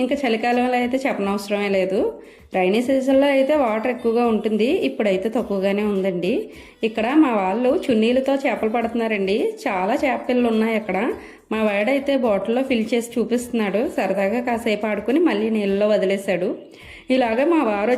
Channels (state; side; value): identical; both; correlation 1.00